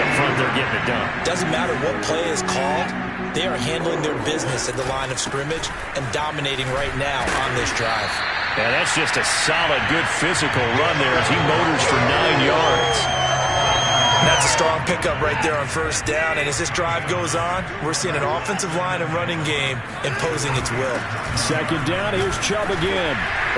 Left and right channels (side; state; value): both; identical; correlation 1.00